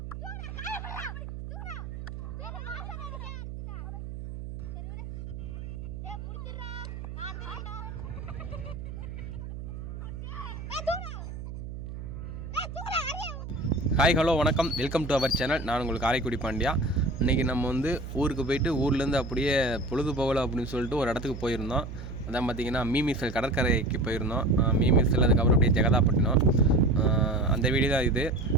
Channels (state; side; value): noise; right; hum, 9 dB below the sound